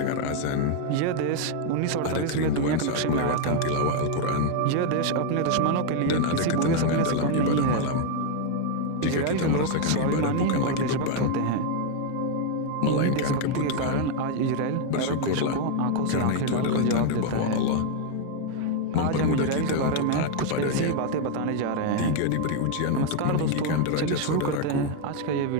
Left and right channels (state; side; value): different; both; correlation 0.01